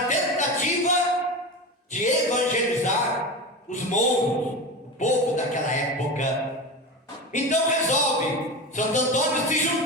tentativa de evangelizar os mouros, o povo daquela época. Então resolve Santo Antônio se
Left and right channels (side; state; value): both; normal; correlation 0.25